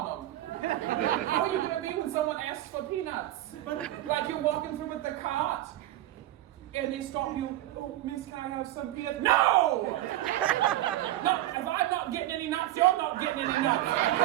them. How are you going to be when someone asks for peanuts? Like you're walking through with the cart, and they stop you, oh, miss, can I have some peanuts? No! No, if I'm not getting any nuts, you're not getting any nuts.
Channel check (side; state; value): left; quieter; 14.6 dB